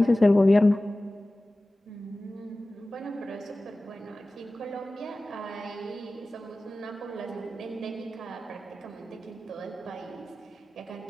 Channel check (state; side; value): normal; both; correlation 0.96